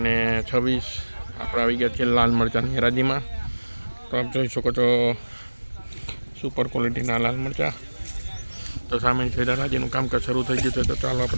આપણે આવી ગયા છીએ લાલ મરચાંની હરાજીમાં. તો આપ જોઈ શકો છો સુપર ક્વોલિટીના લાલ મરચાં. તો સામે છે હરાજીનું કામકાજ શરૂ થઈ ગયું છે. તો ચાલો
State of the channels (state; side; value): inverted; both; correlation -1.00